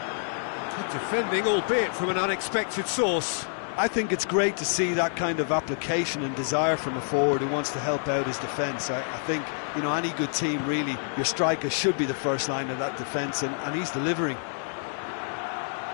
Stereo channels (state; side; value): silent; right; digital silence